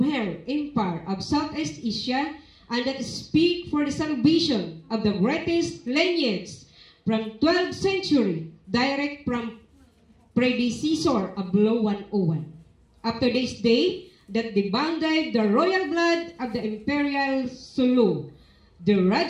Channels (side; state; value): both; identical; correlation 1.00